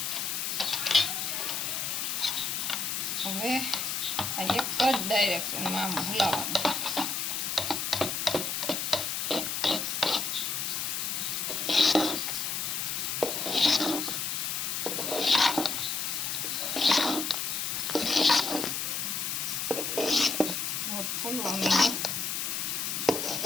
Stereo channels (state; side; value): noise; left; hiss, 1 dB below the sound